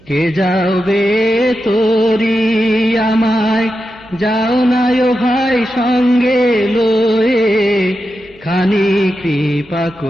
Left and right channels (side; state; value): right; noise; hum, 28 dB below the sound